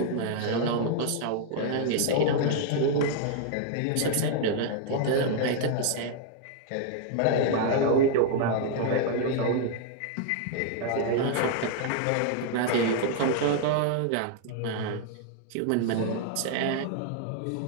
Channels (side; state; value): both; different; correlation 0.00